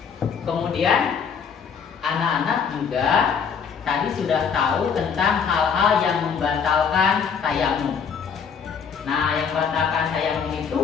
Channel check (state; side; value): quieter; right; 6.6 dB